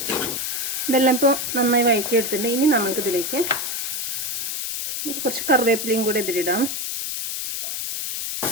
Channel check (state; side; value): noise; left; hiss, 2 dB below the sound